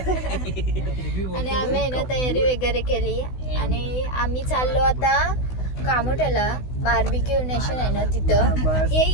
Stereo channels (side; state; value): right; late; 16 ms